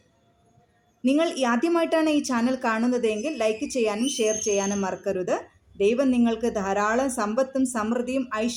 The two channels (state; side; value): identical; both; correlation 1.00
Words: നിങ്ങൾ ആദ്യമായിട്ടാണ് ഈ ചാനൽ കാണുന്നതെങ്കിൽ ലൈക്ക് ചെയ്യാനും ഷെയർ ചെയ്യാനും മറക്കരുത്. ദൈവം നിങ്ങൾക്ക് ധാരാളം സമ്പത്തും സമൃദ്ധിയും